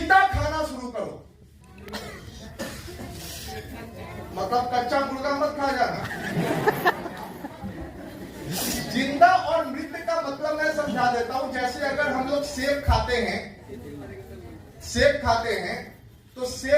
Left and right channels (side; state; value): both; identical; correlation 1.00